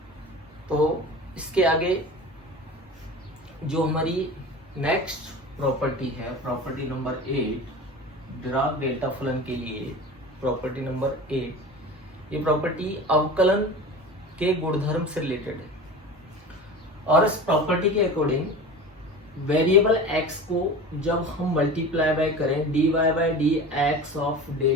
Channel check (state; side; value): normal; both; correlation 0.34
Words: तो इसके आगे जो हमारी नेक्स्ट प्रॉपर्टी है, प्रॉपर्टी नंबर 8, डिराक डेल्टा फलन के लिए प्रॉपर्टी नंबर 8, ये प्रॉपर्टी अवकलन के गुणधर्म से रिलेटेड है। और इस प्रॉपर्टी के अकॉर्डिंग वेरिएबल x को जब हम मल्टीप्लाई बाय करें dy by d x of